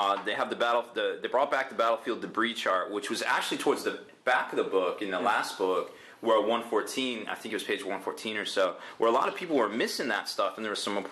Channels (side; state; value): both; identical; correlation 1.00